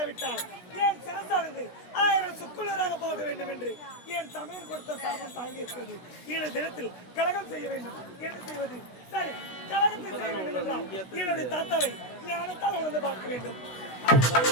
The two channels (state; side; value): late; right; 16 ms